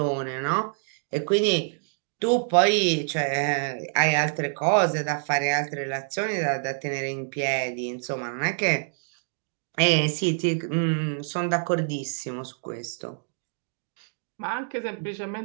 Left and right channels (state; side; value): silent; left; digital silence